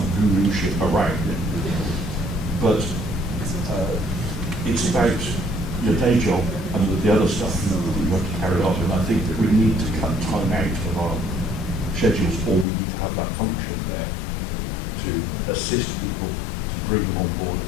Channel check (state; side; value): drops out; right; at 12.7 s